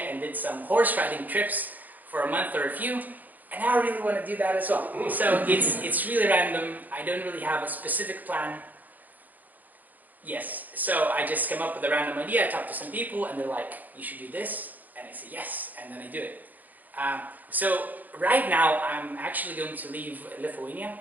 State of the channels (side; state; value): left; late; 0.082 ms